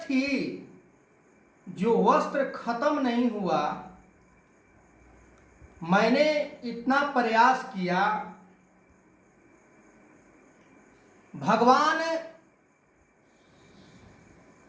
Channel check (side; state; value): both; identical; correlation 1.00